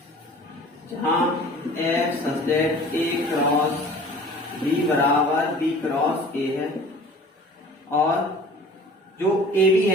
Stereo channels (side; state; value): both; normal; correlation 0.46